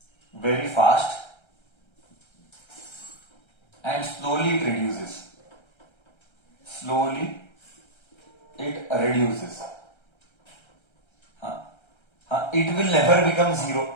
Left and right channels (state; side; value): late; right; 1.3 ms